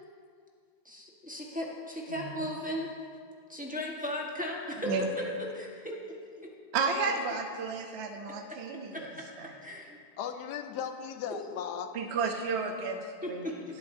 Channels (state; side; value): normal; both; correlation 0.01